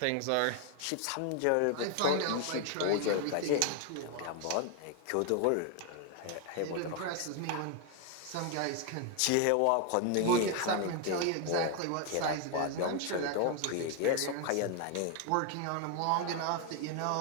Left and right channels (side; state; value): both; different; correlation 0.01